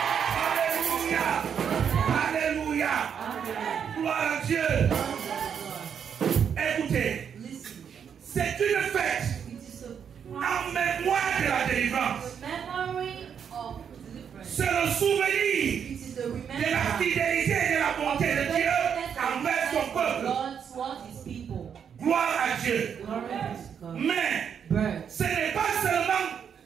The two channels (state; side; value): quieter; left; 7.7 dB